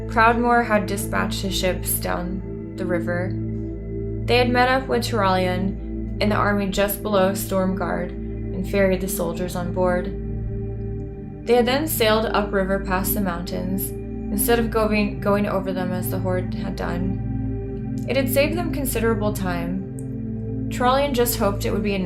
Proudmoore had dispatched his ships down the river. They had met up with Trollian in the army just below Stormguard and ferried the soldiers on board. They had then sailed upriver past the mountains, instead of going over them as the horde had done. It had saved them considerable time. Trollian just hoped it would be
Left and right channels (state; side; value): identical; both; correlation 1.00